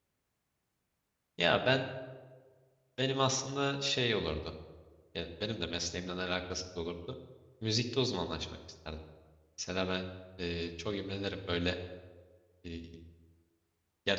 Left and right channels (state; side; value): identical; both; correlation 1.00